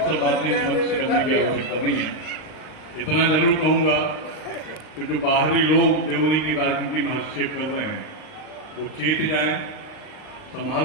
बातें मंच से करने की आवश्यकता नहीं है। इतना जरूर कहूंगा कि जो बाहरी लोग देवरी की राजनीति में हस्तक्षेप कर रहे हैं वो चेत जाएं, संभाल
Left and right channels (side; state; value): right; late; 39 ms